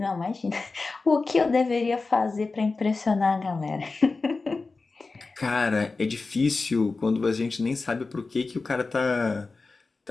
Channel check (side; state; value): right; quieter; 3.9 dB